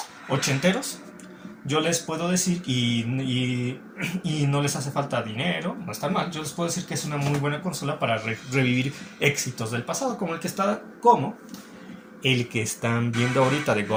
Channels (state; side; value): identical; both; correlation 1.00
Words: ochenteros, yo les puedo decir, y no les hace falta dinero, no está mal, yo les puedo decir que es una muy buena consola para revivir éxitos del pasado, como el que están viendo ahorita de